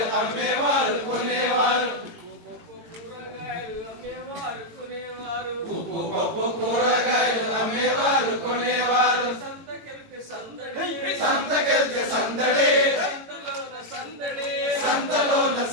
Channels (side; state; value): left; late; 18 ms